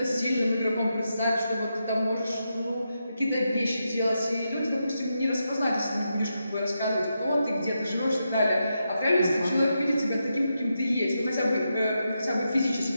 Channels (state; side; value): inverted; both; correlation -0.85